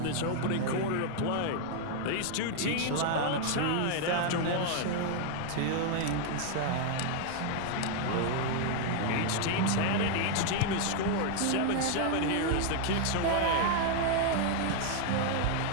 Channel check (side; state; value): both; different; correlation 0.00